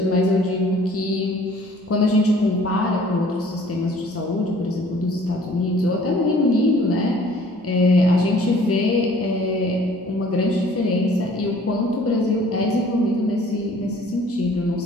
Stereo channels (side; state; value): both; normal; correlation 0.54